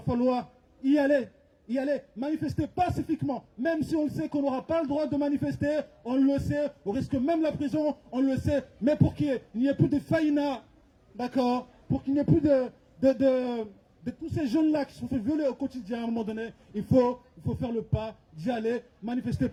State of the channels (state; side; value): identical; both; correlation 1.00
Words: falloir y aller, manifester pacifiquement, même si on le sait qu'on n'aura pas le droit de manifester, on le sait, on risque même la prison, on le sait, mais pour qu'il n'y ait plus de faïna, d'accord, pour qu'il n'y ait plus de tous ces jeunes-là qui se sont fait violer au quotidien, à un moment donné, il faut faire le pas d'y aller, manifester